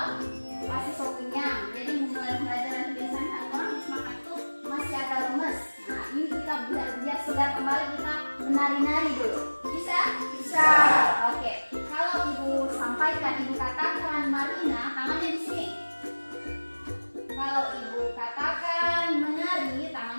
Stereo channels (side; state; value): both; inverted; correlation -1.00